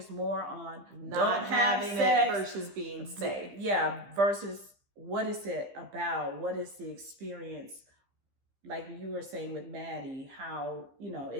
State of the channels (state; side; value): late; left; 15 ms